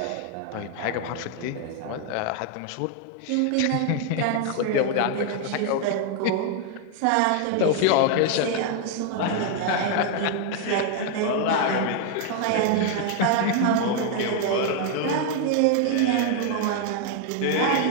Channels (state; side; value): different; both; correlation 0.00